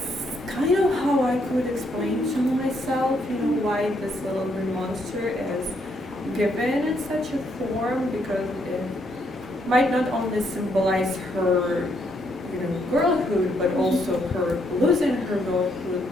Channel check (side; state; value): both; normal; correlation 0.74